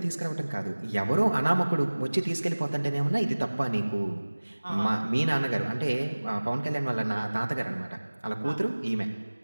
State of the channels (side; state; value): both; inverted; correlation -1.00